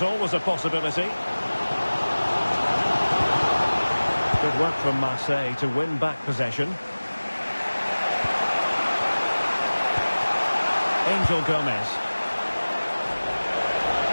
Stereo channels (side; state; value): both; inverted; correlation -1.00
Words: always a possibility. Good work from Marseille to win back possession. Angel Gomez.